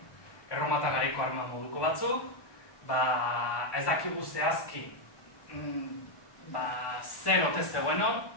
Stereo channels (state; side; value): late; right; 1.2 ms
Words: Erromatar garaiko arma moduko batzuk, ez dakigu zehazki zer ote zegoen hor,